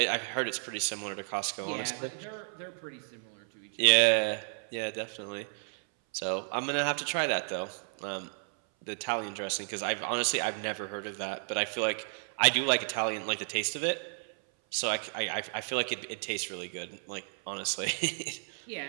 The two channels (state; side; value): silent; left; 56 dB below the other